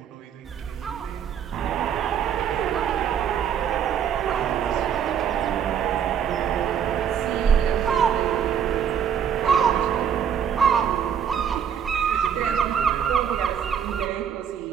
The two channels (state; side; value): quieter; left; 8.3 dB